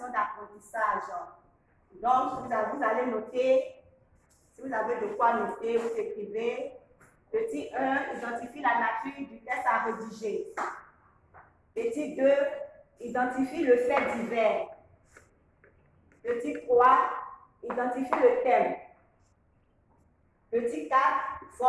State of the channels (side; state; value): both; identical; correlation 1.00